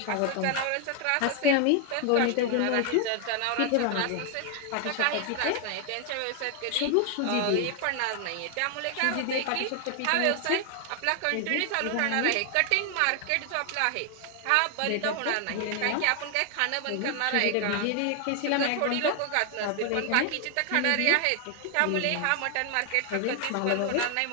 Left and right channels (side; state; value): both; different; correlation 0.00